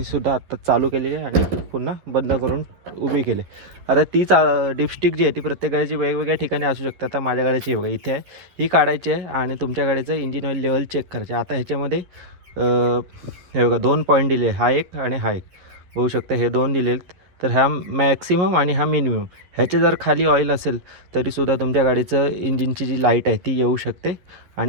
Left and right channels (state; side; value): late; left; 11 ms